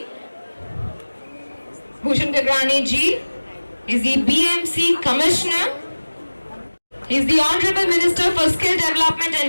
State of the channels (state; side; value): inverted; both; correlation -1.00